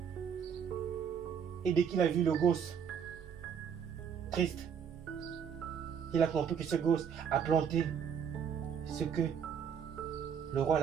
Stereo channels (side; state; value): left; quieter; 7.5 dB